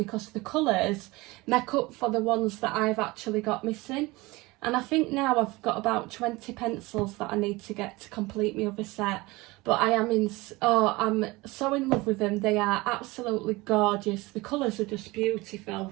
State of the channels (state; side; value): quieter; left; 22.1 dB